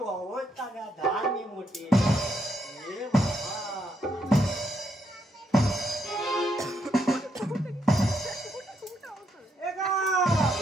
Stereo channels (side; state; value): both; normal; correlation 0.77